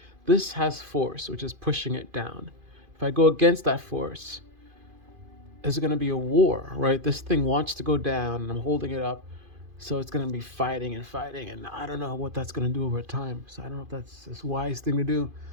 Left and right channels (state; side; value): late; left; 2.5 ms